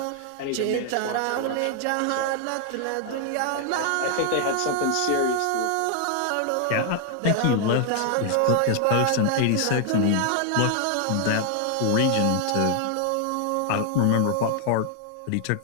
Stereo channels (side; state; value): both; different; correlation 0.00